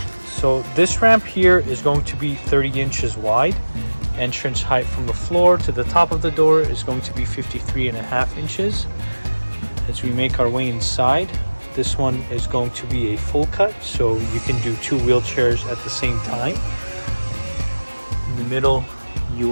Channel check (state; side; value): inverted; both; correlation -1.00